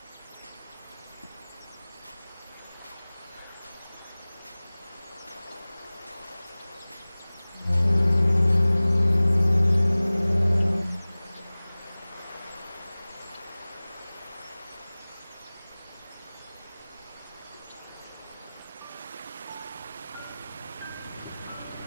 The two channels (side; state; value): both; inverted; correlation -0.99